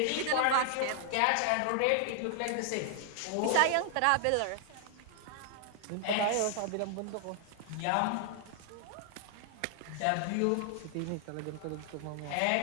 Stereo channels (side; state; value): both; different; correlation 0.00